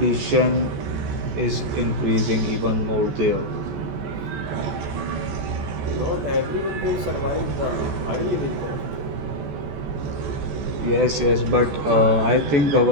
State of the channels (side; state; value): left; late; 14 ms